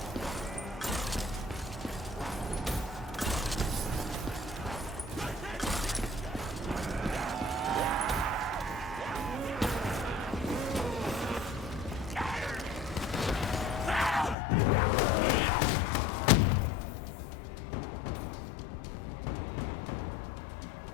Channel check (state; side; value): drops out; right; at 14.4 s